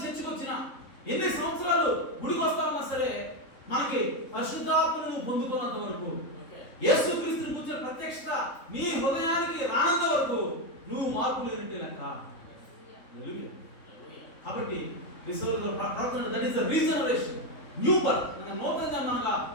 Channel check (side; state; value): right; late; 3.6 ms